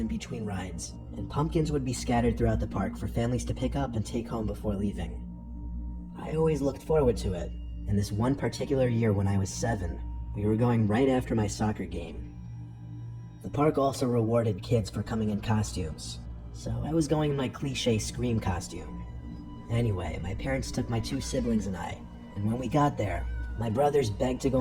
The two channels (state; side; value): identical; both; correlation 1.00